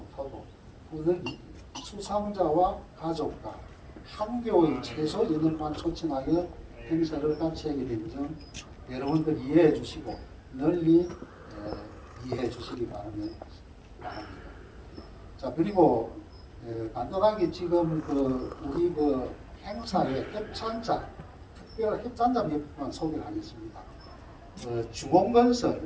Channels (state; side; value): identical; both; correlation 1.00